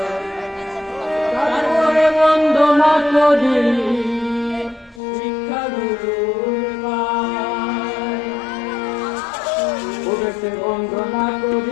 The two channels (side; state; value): right; drops out; at 5.0 s